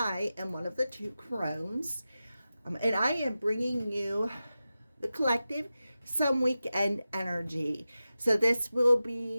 am one of the two crones, and I am bringing you the collective some weekend energy. So this will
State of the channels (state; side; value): inverted; both; correlation -0.93